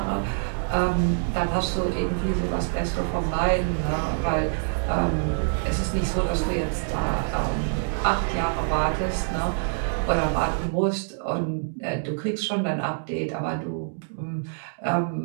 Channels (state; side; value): silent; left; digital silence